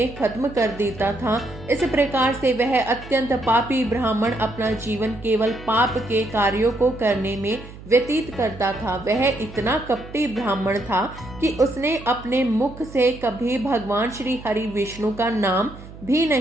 खत्म कर देता था। इस प्रकार से वह अत्यंत पापी ब्राह्मण अपना जीवन केवल पाप के कार्यों को करने में व्यतीत करता था। वह इतना कपटी ब्राह्मण था कि उसने अपने मुख से कभी भगवान श्री हरि विष्णु का नाम भी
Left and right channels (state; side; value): noise; right; hum, 16 dB below the sound